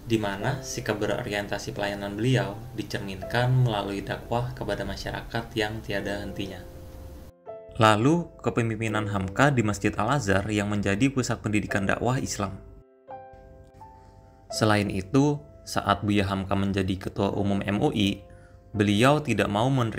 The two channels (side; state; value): both; identical; correlation 1.00